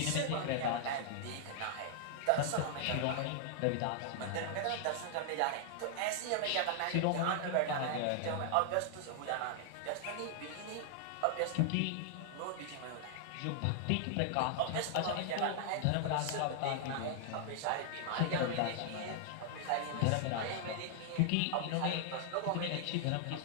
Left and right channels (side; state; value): both; different; correlation -0.01